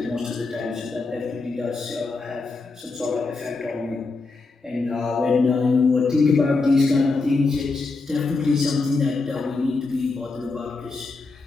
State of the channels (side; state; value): right; quieter; 3.8 dB